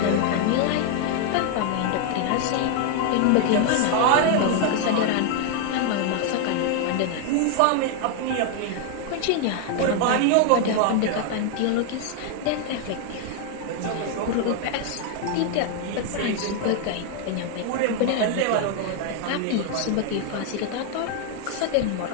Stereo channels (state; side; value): different; both; correlation 0.00